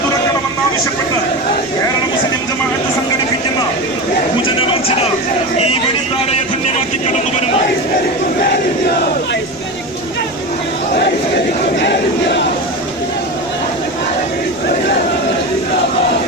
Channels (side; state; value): left; noise; rumble, 26 dB below the sound